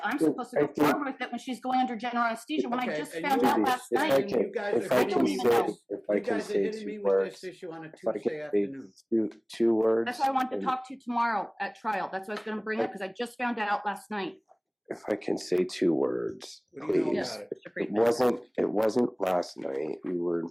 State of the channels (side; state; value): both; identical; correlation 1.00